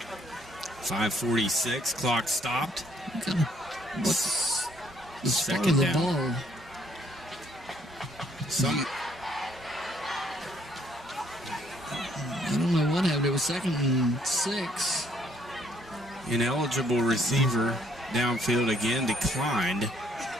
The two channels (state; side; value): normal; both; correlation 0.66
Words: 5:46, clock stopped. What's the start of the ball? I don't know what happened. It was 2nd and 6. Ineligible receiver downfield again declined.